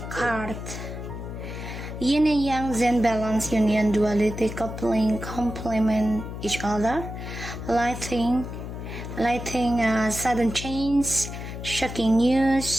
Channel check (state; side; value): noise; left; hum, 8 dB below the sound